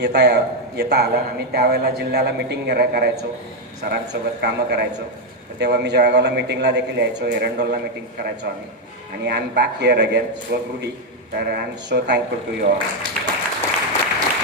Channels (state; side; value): normal; both; correlation 0.03